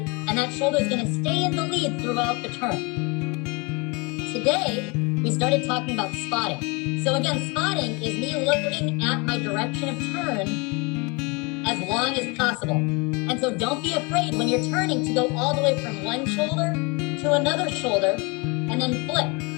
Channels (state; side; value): quieter; right; 29.2 dB